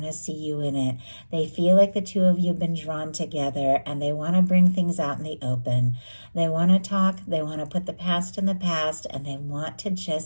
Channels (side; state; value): both; inverted; correlation -1.00